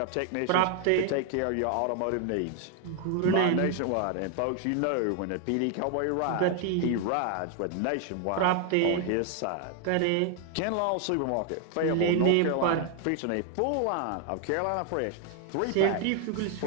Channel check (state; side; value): different; both; correlation 0.00